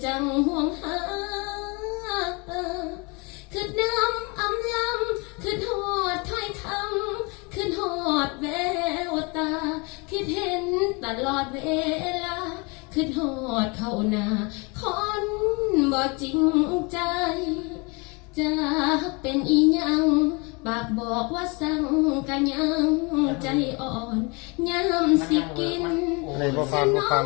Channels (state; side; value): quieter; right; 29.7 dB